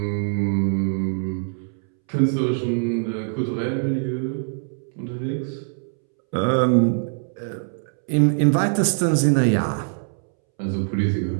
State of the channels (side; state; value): left; silent; 63 dB below the other